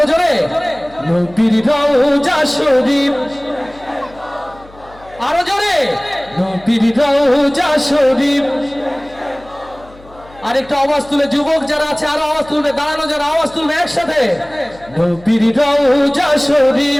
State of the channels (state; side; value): noise; left; hum, 23 dB below the sound